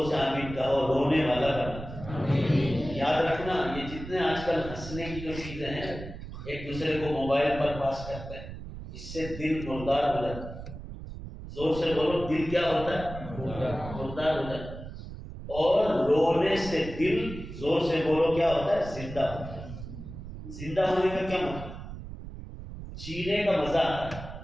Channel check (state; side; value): noise; right; rumble, 11 dB below the sound